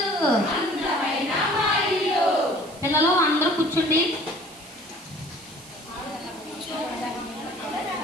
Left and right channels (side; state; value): right; noise; hiss, 20 dB below the sound